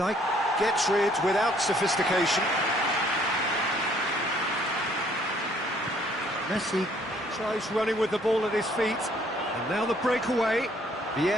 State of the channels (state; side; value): normal; both; correlation 0.63